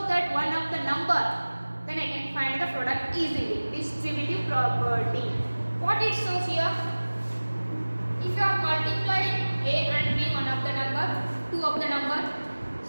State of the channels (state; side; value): inverted; both; correlation -1.00